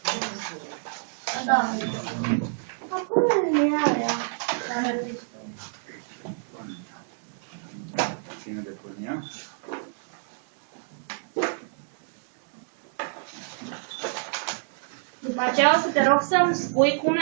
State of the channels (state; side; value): silent; left; digital silence